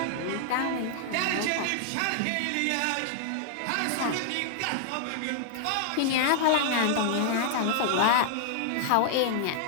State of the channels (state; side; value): different; both; correlation 0.00